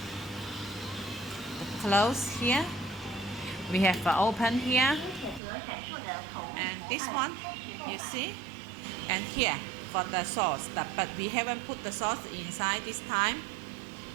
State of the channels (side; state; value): left; drops out; at 5.4 s